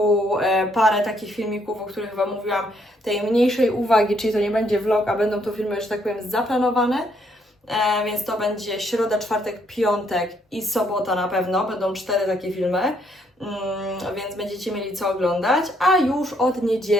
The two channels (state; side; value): normal; both; correlation 0.71